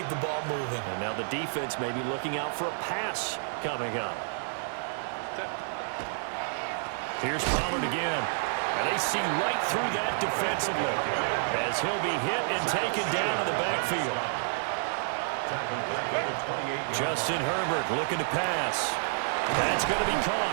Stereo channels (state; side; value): silent; left; digital silence